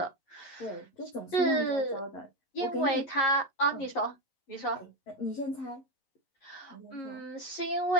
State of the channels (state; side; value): late; right; 11 ms